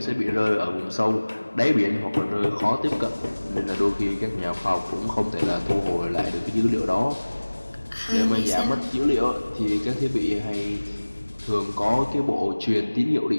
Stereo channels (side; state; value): both; inverted; correlation -1.00